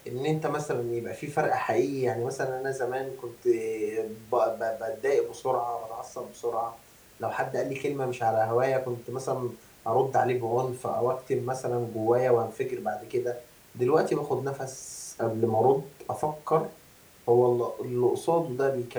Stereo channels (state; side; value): identical; both; correlation 1.00